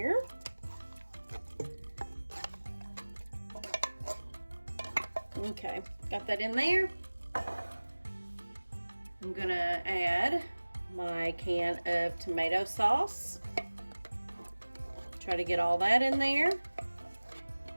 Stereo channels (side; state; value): both; inverted; correlation -1.00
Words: Okay, got that in there. I'm gonna add my can of tomato sauce. Try to get all that in there.